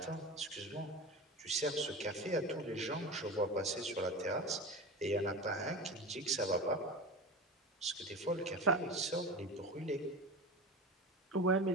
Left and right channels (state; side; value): normal; both; correlation 0.28